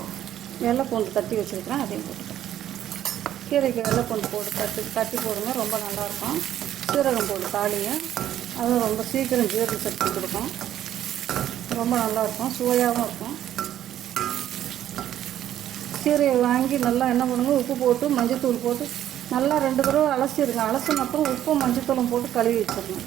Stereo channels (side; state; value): left; quieter; 11.6 dB